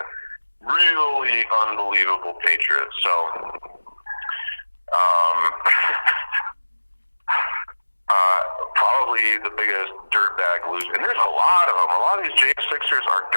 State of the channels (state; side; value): inverted; both; correlation -1.00